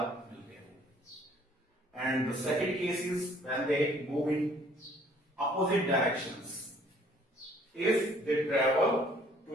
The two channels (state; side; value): normal; both; correlation 0.59